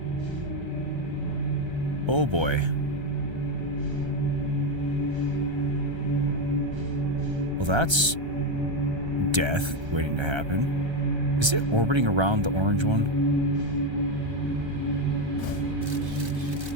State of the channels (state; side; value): late; left; 1.3 ms